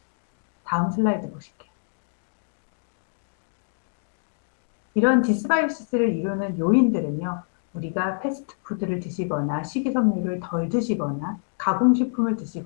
다음 슬라이드 보실게요. 이런 디스바이오시스를 이루는 요인들은요, 우리가 패스트푸드를 드시거나 식이섬유를 덜 드시거나 가공식품을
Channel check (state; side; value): silent; right; digital silence